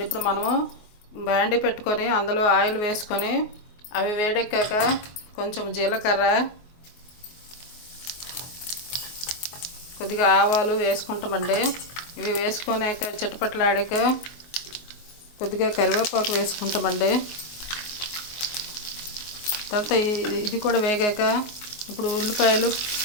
ఇప్పుడు మనము బాండీ పెట్టుకొని అందులో ఆయిల్ వేసుకొని అవి వేడెక్కాక కొంచెం జీలకర్ర, కొద్దిగా ఆవాలు వేసుకుంటామండి. ఇవి వేసుకున్నాక చిటపట్లాడాక కొద్దిగా కరివేపాకు వేసుకుంటామండి. తర్వాత ఇది కూడా వేగాక ఇప్పుడు ఉల్లిపాయలు,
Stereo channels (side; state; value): right; late; 24 ms